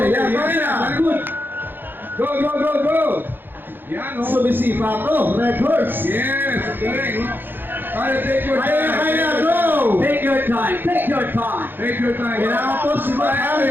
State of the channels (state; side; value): late; left; 0.097 ms